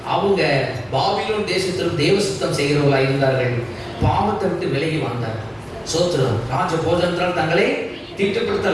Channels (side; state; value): both; identical; correlation 1.00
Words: அவங்க பாபிலோன் தேசத்திலும் தேவ சுத்தம் செய்கிறவர்களாக இருந்தார்கள். பாவத்தை விட்டு விலகி வந்தார்கள். சோத்திரம். ராஜ போஜனத்தால் தங்களை